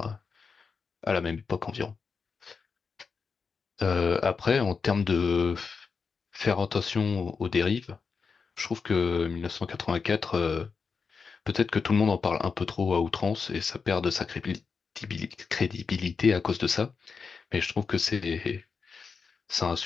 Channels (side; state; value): right; quieter; 5.3 dB